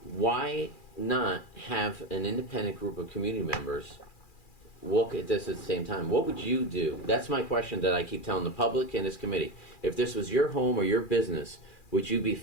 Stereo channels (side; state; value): right; late; 2.4 ms